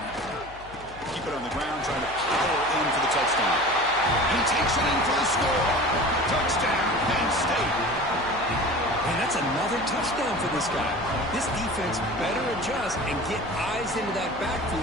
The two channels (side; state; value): left; noise; hum, 19 dB below the sound